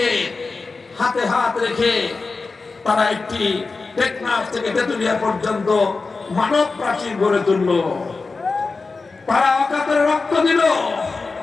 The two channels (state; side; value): quieter; right; 4.1 dB